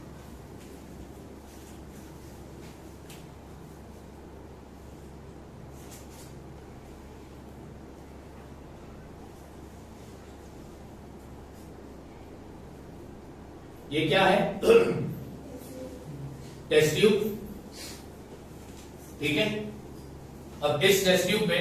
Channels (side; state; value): both; identical; correlation 1.00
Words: ये क्या है? टेस्ट ट्यूब, ठीक है। अब इस टेस्ट ट्यूब